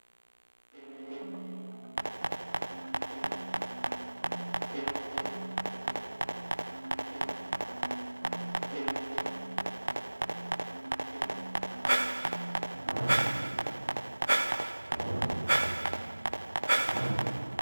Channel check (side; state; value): both; inverted; correlation -1.00